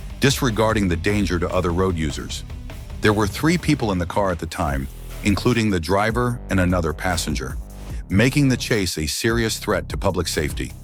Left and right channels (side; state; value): both; identical; correlation 1.00